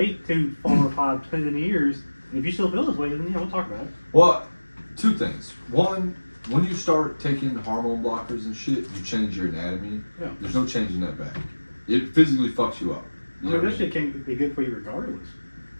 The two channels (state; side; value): inverted; both; correlation -1.00